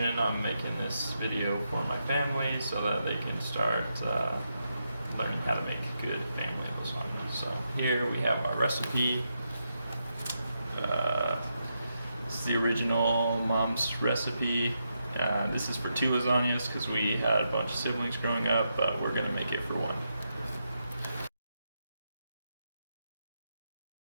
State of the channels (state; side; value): inverted; both; correlation -0.84